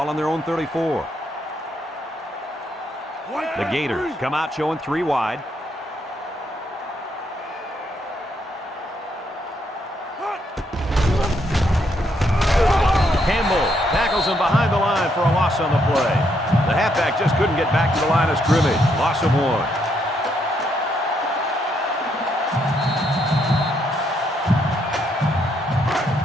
on their own 34. The Gators come out showing 3 wide. Campbell tackles him behind the line for a loss on the play. The halfback just couldn't get back to the line of scrimmage. Loss of 1.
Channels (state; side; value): normal; both; correlation 0.75